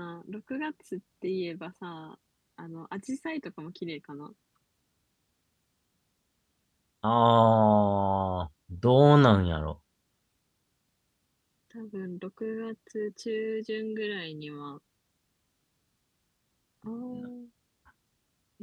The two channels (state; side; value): identical; both; correlation 1.00